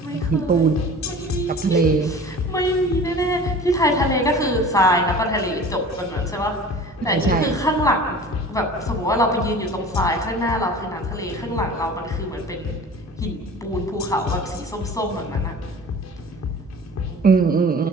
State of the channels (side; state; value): both; normal; correlation 0.41